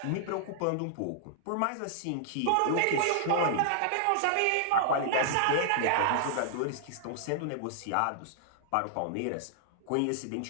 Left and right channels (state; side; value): different; both; correlation -0.01